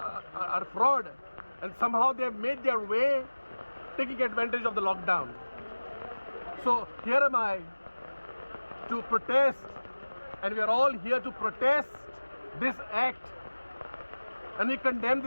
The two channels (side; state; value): both; inverted; correlation -1.00